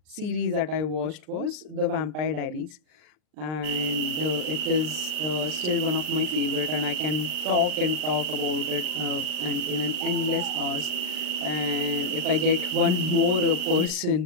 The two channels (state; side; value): late; left; 39 ms